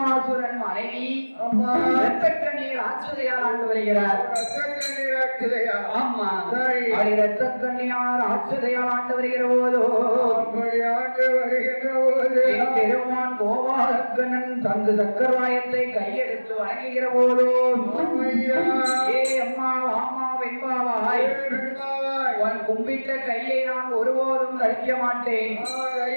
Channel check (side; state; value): both; inverted; correlation -1.00